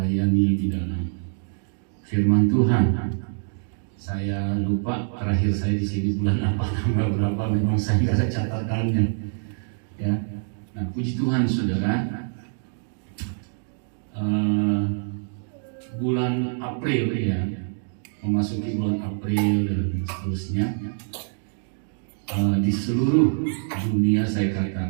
di dalam firman Tuhan. Saya lupa terakhir saya di sini bulan apa, tanggal berapa, memang saya nggak ada catatannya. Ya, nah puji Tuhan saudara, bulan April ya, memasuki bulan April dan seterusnya, di seluruh dunia saya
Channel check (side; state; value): left; silent; 62 dB below the other